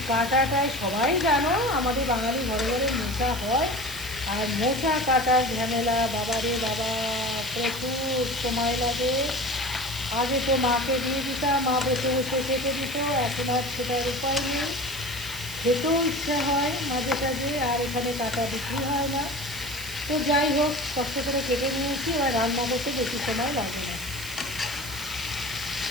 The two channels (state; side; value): noise; right; hiss, 11 dB below the sound